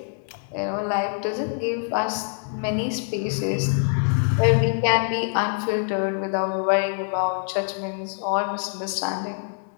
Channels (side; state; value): right; silent; 57 dB below the other